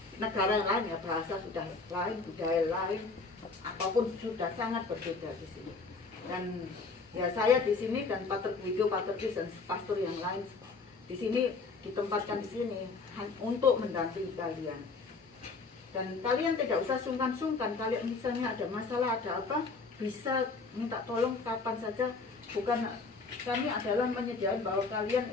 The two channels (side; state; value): right; quieter; 4.2 dB